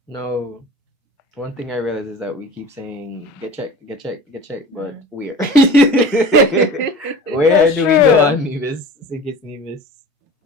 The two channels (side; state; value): both; normal; correlation 0.38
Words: No, one thing I realize is that we keep saying get checked, get checked, get checked, but where? Where That's do we go true. on Nevis, Sikis Nevis,